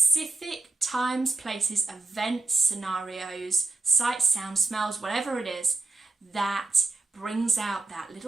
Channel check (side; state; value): left; quieter; 3.5 dB